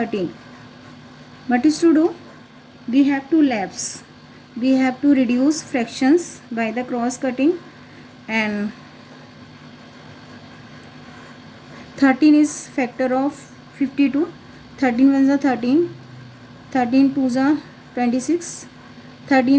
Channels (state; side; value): identical; both; correlation 1.00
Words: What is to do? We have to lapse. We have to reduce fractions by the cross cutting, and 13 is factor of 52. 13 ones are 13. 13 twos are 26.